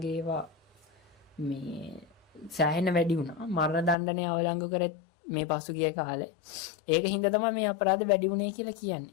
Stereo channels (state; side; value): drops out; right; at 4.0 s